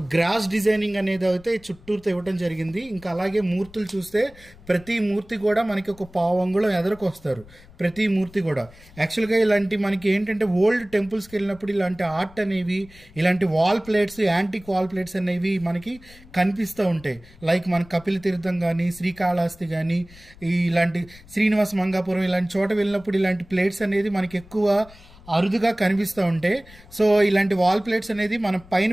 గ్రాస్ డిజైనింగ్ అనేది అయితే చుట్టూతో ఇవ్వడం జరిగింది. ఇంకా అలాగే మూర్తులు చూస్తే ప్రతి మూర్తి కూడా మనకి ఒక పావు అంగుళం ఎదరకు వస్తారు, ప్రతి మూర్తి కూడా. యాక్చువల్గా ఇలాంటి మనకి ఏంటంటే ఓల్డ్ టెంపుల్స్కి వెళ్ళినప్పుడు ఇలాంటి ఆర్ట్ అనేవి, ఇలాంటి wall plates, antique wall plates అనేవి మనకి కనిపిస్తూ ఉంటాయి. లైక్ మన కపిల తీర్థం కానీ, శ్రీకాళహస్తి కానీ, ఇలాంటి శ్రీనివాస మంగాపురం ఇలాంటి చోట వెళ్ళినప్పుడు ఇలాంటి ప్లేట్స్ అనేది మనకి ఎక్కువ అరుదుగా కనిపిస్తూ ఉంటాయి. సో ఇలాంటి వాల్ ప్లేట్స్ అనేది మనం పైన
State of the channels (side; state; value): left; noise; rumble, 23 dB below the sound